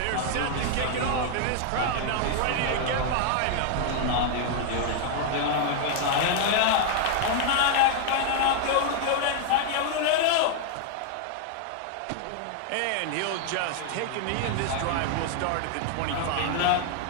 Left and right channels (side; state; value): both; different; correlation 0.00